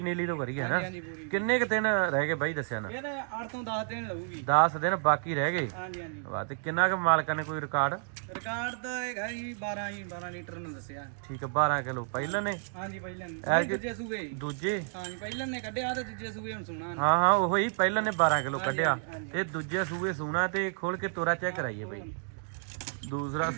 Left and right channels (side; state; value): left; silent; digital silence